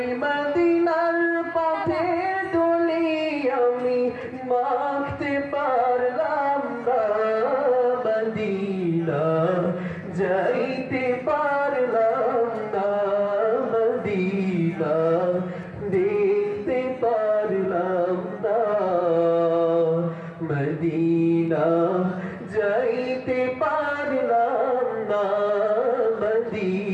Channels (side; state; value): both; identical; correlation 1.00